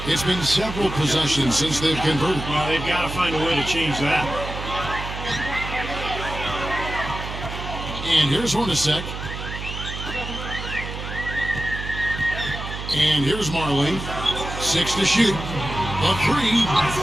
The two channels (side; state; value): right; noise; hum, 8 dB below the sound